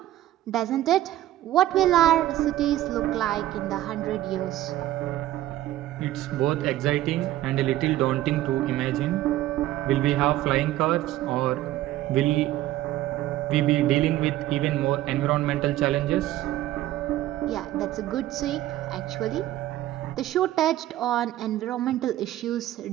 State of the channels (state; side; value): quieter; left; 14.4 dB